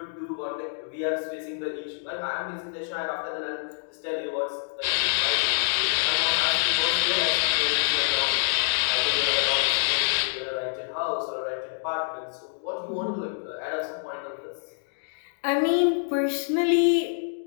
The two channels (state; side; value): silent; right; digital silence